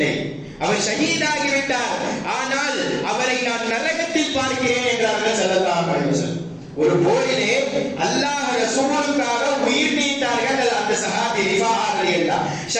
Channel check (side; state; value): both; identical; correlation 1.00